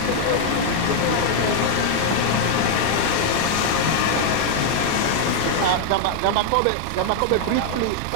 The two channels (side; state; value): both; different; correlation 0.00